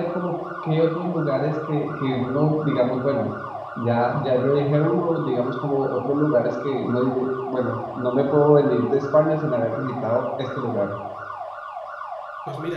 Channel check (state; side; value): identical; both; correlation 1.00